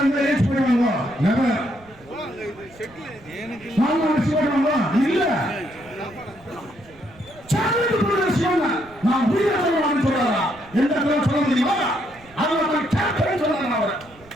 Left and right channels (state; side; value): noise; right; rumble, 25 dB below the sound